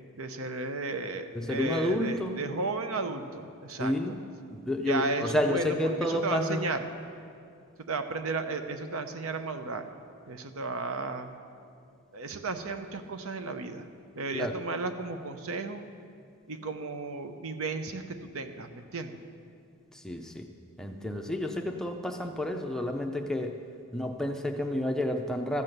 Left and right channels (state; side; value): normal; both; correlation 0.39